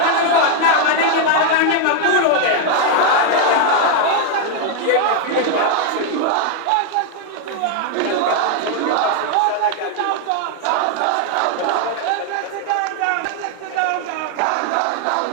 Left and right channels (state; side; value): different; both; correlation 0.00